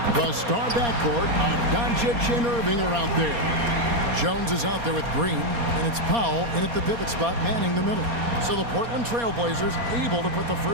The star backcourt of Doncic and Irving are out there. Jones is out there with Green, and it's Powell in at the pivot spot manning the middle. So the Portland Trail Blazers able to put the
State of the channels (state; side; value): late; left; 4.3 ms